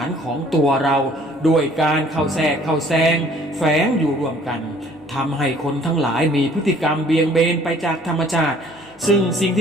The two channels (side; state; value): both; normal; correlation 0.56